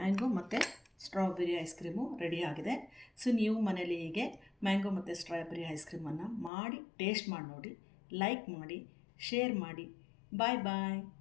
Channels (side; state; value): right; drops out; at 6.5 s